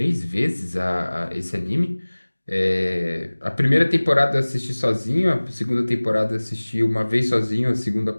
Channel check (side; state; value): both; inverted; correlation -1.00